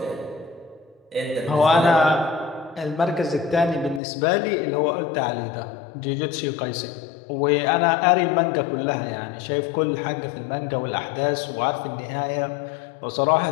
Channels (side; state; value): right; drops out; at 4.0 s